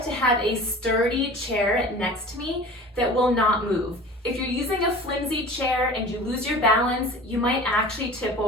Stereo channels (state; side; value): normal; both; correlation 0.40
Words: to have a sturdy chair next to me that will not move. If you're using a flimsy chair and you lose your balance, you might actually tip